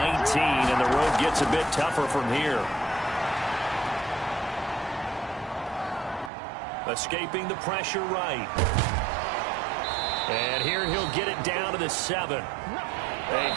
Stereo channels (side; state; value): left; drops out; at 6.3 s